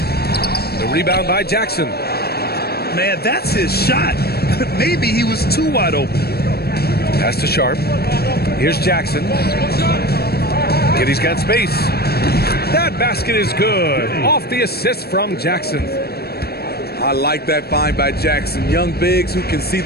The rebound by Jackson. Man, that's his shot. Maybe he was too wide open. Pass to Sharp. Here's Jackson. Giddey's got space. That basket is good. Off the assist from Jackson. I like that find by Jackson. Young bigs who can see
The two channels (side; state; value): right; late; 0.46 ms